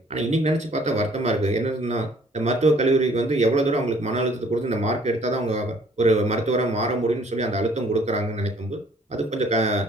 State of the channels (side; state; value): both; normal; correlation 0.59